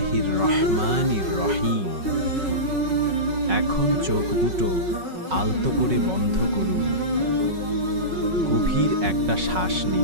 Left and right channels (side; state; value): left; late; 5.4 ms